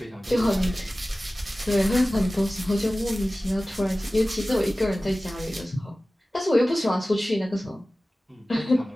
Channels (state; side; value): normal; both; correlation 0.97